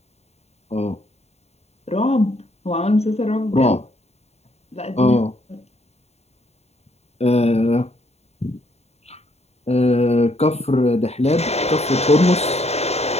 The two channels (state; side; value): late; right; 0.31 ms